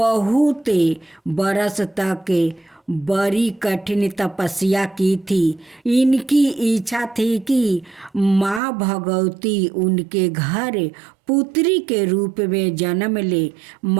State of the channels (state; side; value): drops out; left; at 8.6 s